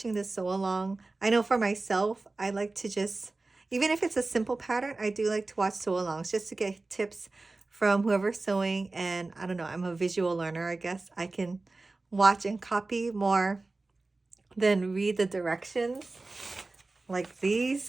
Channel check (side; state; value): left; quieter; 3.4 dB